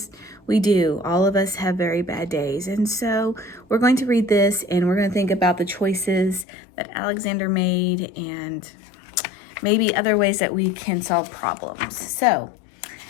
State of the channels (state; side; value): drops out; right; at 6.5 s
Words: We do. All of us have very bad days. And so we're going to read this and we're going to think about the choices that Alexander made and maybe other ways that we can solve problems. So